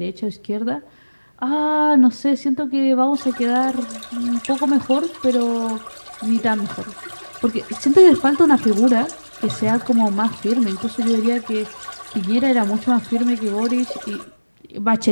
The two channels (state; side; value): inverted; both; correlation -1.00